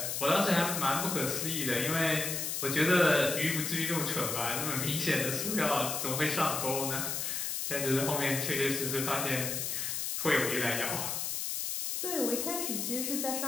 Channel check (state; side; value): noise; left; hiss, 2 dB below the sound